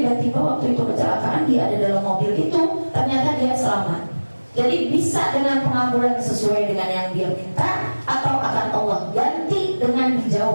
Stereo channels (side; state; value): both; inverted; correlation -1.00